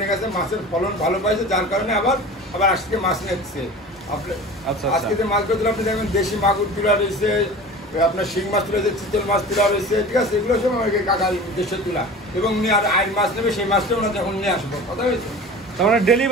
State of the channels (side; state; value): both; normal; correlation 0.37